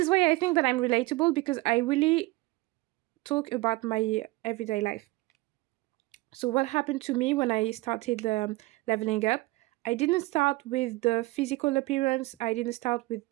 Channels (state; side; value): quieter; left; 21.4 dB